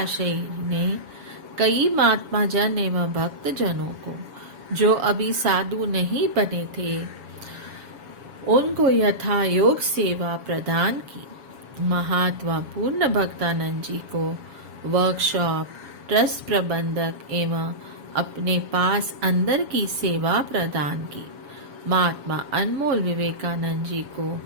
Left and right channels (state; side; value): late; left; 7.2 ms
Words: ने कई महात्मा जन एवं भक्त जनों को जो अभी साधु नहीं बने थे उनको यथा योग सेवा प्रदान की। महात्मा पूर्ण भक्तानंद जी को वर्कशॉप, ट्रस्ट प्रबंधक एवं अपने पास अंदर की सेवा प्रदान की। महात्मा अनमोल विवेकानंद जी को